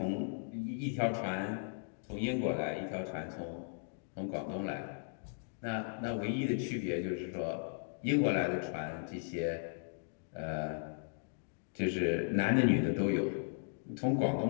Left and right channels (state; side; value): silent; right; digital silence